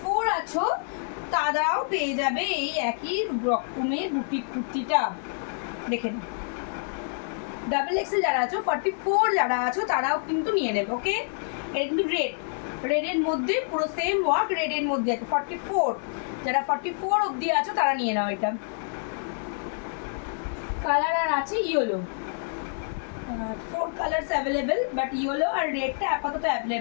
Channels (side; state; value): right; silent; digital silence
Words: আছো তারাও পেয়ে যাবে এই একই রকমের বুটিক কুর্তিটা, দেখে নাও। ডাবল এক্সেল যারা আছো, 44 যারা আছো তারাও কিন্তু নিয়ে নেবে। ওকে, এটা কিন্তু রেডের মধ্যে পুরো সেম ওয়ার্ক, রেডের মধ্যে আছে। 44 যারা 44 অবধি আছো তারা নিয়ে নাও। এটা কালার আর আছে yellow, 4 colours available, but yellow আর রেডটা আপাতত